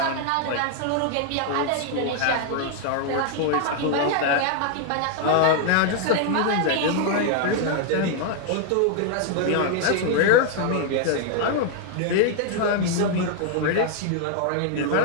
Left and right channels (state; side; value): different; both; correlation 0.00